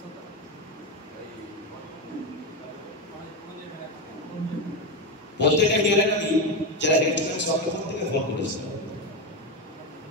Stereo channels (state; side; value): normal; both; correlation 0.13